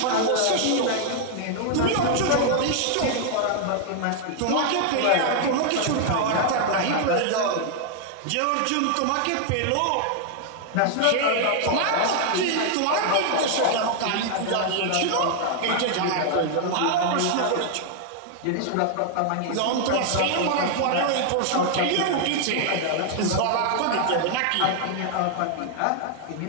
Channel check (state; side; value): different; both; correlation 0.00